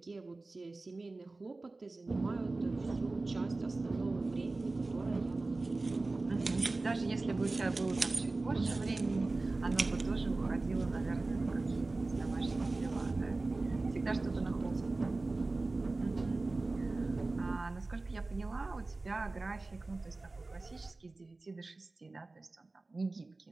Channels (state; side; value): quieter; left; 3.3 dB